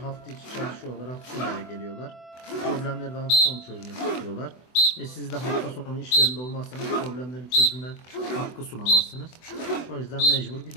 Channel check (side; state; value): right; late; 24 ms